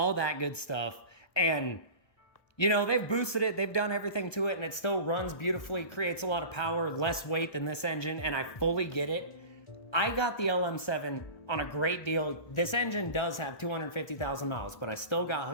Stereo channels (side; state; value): right; late; 1.2 ms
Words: that good stuff. And you know, they've boosted it, they've done everything to it, and it still runs beautifully, creates a lot of power, less weight than this engine, and I fully get it. I got the LM7 on a great deal. This engine does have 250,000 miles, but I still got